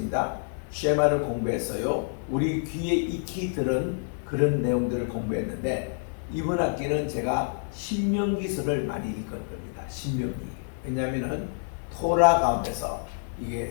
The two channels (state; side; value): silent; right; 60 dB below the other